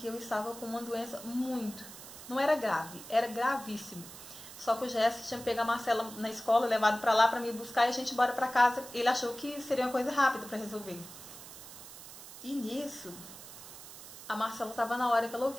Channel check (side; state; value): right; noise; hiss, 15 dB below the sound